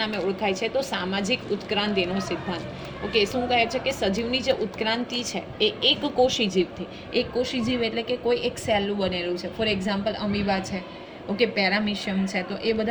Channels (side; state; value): both; identical; correlation 1.00